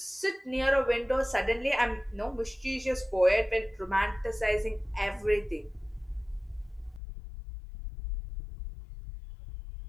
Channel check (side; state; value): right; drops out; at 7.0 s